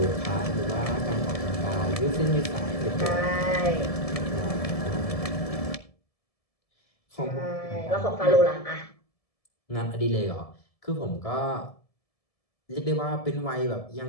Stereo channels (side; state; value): right; late; 1.7 ms